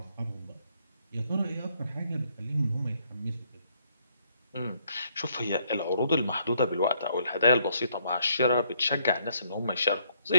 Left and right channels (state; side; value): inverted; both; correlation -0.69